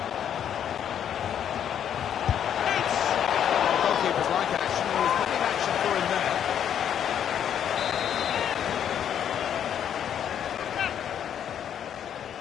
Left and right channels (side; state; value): right; quieter; 9.3 dB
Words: Goalkeepers like action. There was plenty of action for him there.